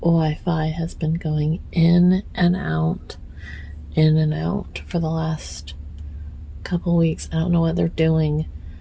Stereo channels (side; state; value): both; identical; correlation 1.00